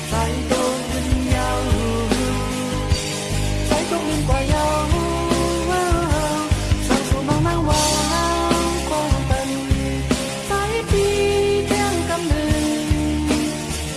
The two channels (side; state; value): both; identical; correlation 1.00